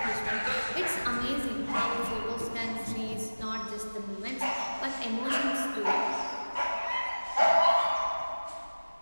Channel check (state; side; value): inverted; both; correlation -1.00